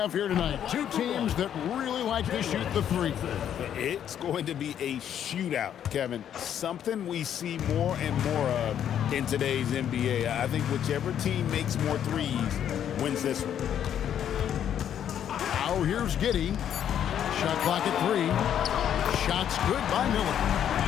here tonight? Two teams that really like to shoot the three. It's going to be a shootout, Kevin. Something we see more and more of in today's NBA. I think whichever team makes more threes wins this one. Now here's Giddey. Shot clock at 3. Shots good by Miller.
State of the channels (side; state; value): right; quieter; 9.7 dB